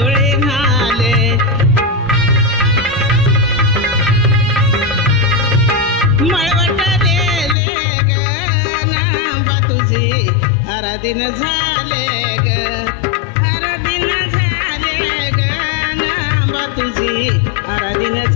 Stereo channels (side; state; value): right; drops out; at 7.6 s